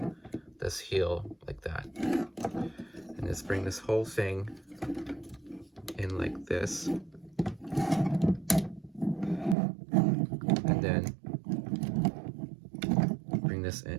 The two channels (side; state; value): left; drops out; at 9.6 s